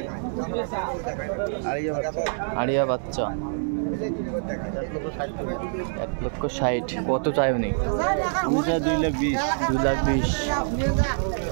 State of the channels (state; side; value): silent; left; digital silence